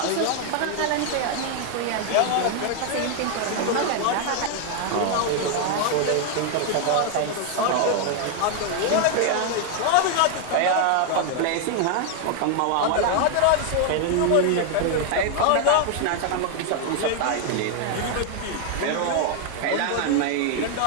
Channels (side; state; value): both; different; correlation 0.00